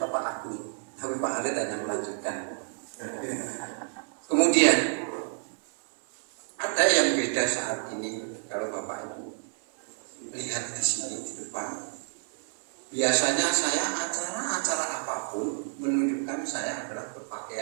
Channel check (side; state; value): left; silent; digital silence